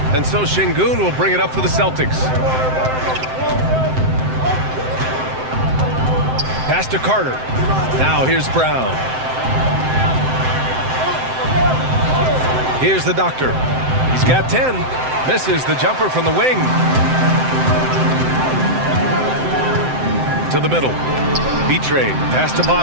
And so Şengün will bring it up for the Celtics. Pass to Carter. Now here's Brown. Here's the doctor. He's got 10. Misses the jumper from the wing. To the middle. B-Train. Pass to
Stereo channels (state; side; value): late; left; 7.7 ms